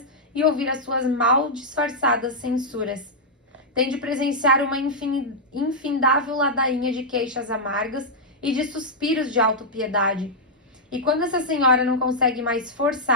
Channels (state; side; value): normal; both; correlation -0.06